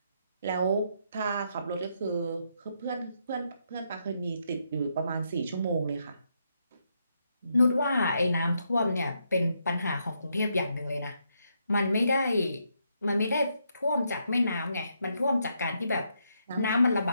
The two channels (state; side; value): inverted; both; correlation -0.78